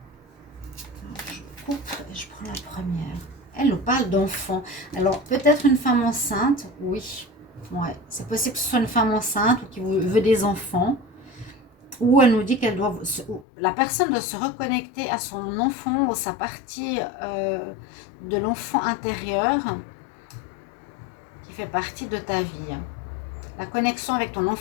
Alors, je coupe et je prends la première. Elle nous parle d'enfant. Alors, peut-être une femme enceinte, oui. Ouais, c'est possible que ce soit une femme enceinte ou qui veut des enfants. Ou elle nous dit qu'elle doit, la personne doit se reconnecter à son enfant ou sa partie de l'enfant intérieur qui fait partie de ta vie. La connexion avec ton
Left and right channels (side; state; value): right; drops out; at 13.5 s